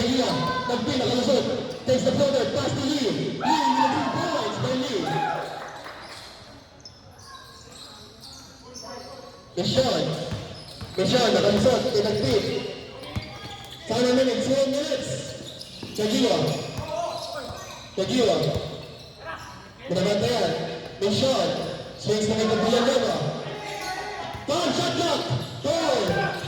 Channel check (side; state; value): both; identical; correlation 1.00